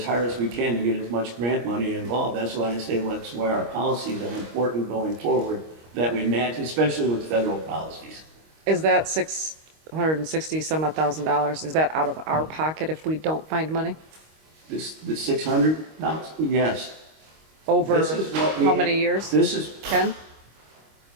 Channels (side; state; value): left; late; 25 ms